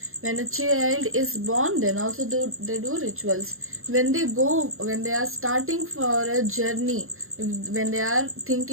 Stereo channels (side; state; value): left; late; 0.61 ms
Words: When a child is born, then also they do rituals. When they are starting for a journey, when they are